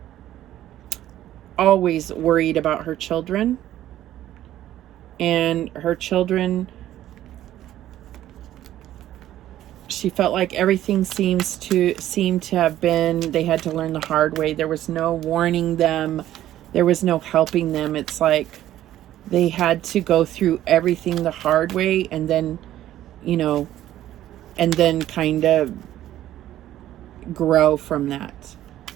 always worried about her children. And her children, she felt like everything seemed to have been, they had to learn the hard way. There was no warning them. There was no helping them. It's like they had to go through everything the hard way, and then, you know, and then kind of grow from that.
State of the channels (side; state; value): left; quieter; 13.0 dB